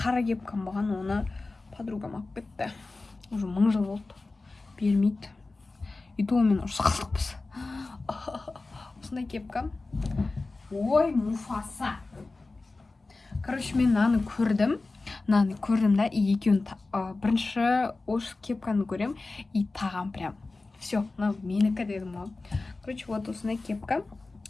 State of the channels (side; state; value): right; quieter; 3.4 dB